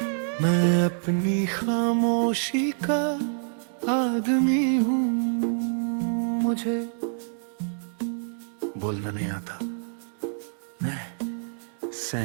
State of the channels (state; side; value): silent; left; digital silence